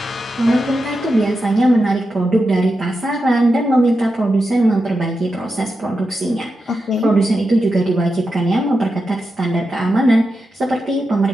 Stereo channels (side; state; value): both; normal; correlation 0.89